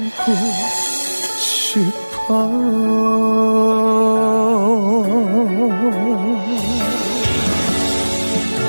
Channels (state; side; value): inverted; both; correlation -1.00